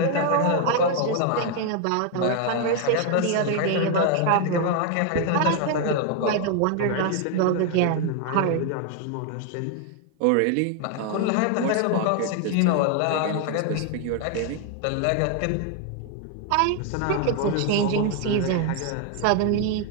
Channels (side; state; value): both; different; correlation 0.01